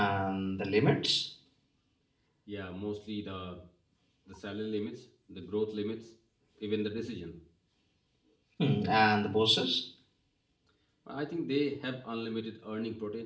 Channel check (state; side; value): identical; both; correlation 1.00